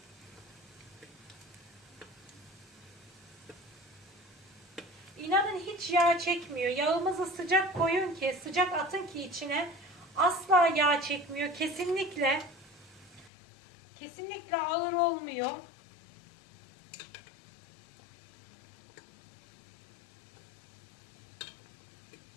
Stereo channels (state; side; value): drops out; right; at 13.3 s